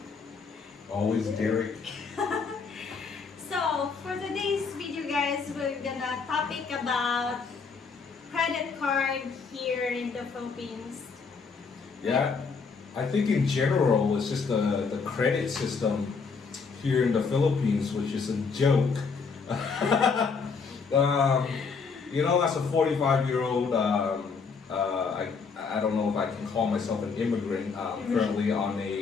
Always Derek. So, for today's video guys, we're gonna topic about credit card here in the Philippines. Yeah, I think in general it's just the credit system here in the Philippines, which is a joke. As a 45-year-old, I don't know if I can call myself an immigrant, currently on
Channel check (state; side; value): quieter; right; 5.2 dB